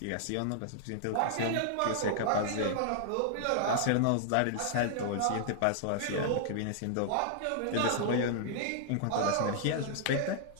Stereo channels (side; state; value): both; different; correlation -0.01